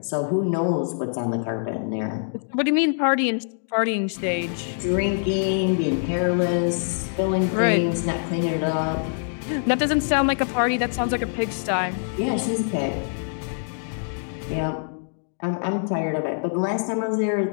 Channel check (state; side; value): silent; right; digital silence